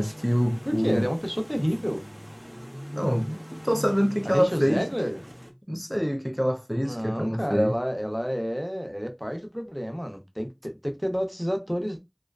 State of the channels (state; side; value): identical; both; correlation 1.00